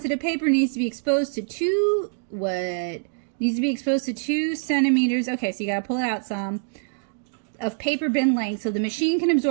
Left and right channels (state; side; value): silent; left; digital silence